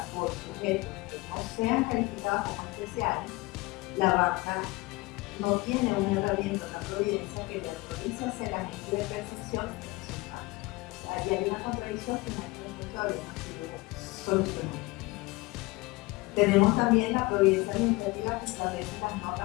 por sujetos que no no sean calificadas como especiales, la banca no tiene una herramienta, una providencia que le autorice a ser agente de percepción de resultados. O sea, allí hay una contradicción que en este momento todavía no ha sido solucionada. Tenemos también la providencia administrativa que establece las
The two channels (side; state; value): right; quieter; 22.6 dB